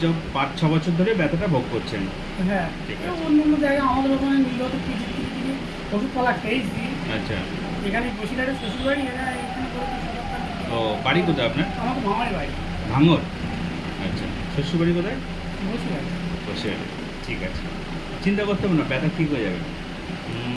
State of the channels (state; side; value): identical; both; correlation 1.00